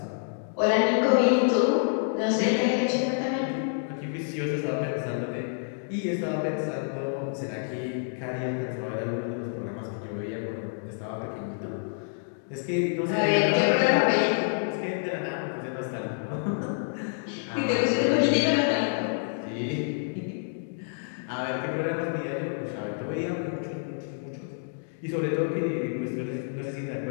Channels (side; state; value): right; silent; digital silence